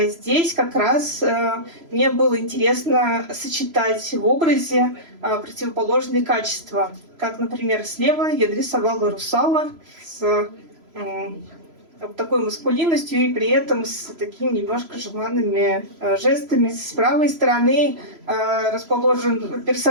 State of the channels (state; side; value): late; left; 3.0 ms